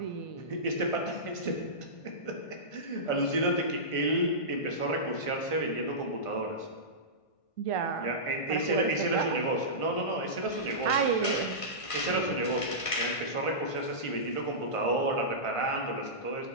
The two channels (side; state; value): right; late; 1.5 ms